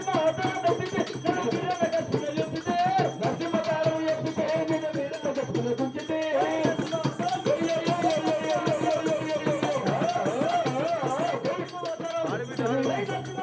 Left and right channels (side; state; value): both; identical; correlation 1.00